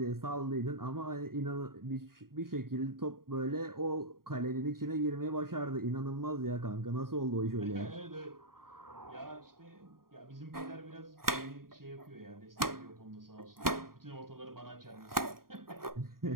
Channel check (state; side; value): late; left; 0.92 ms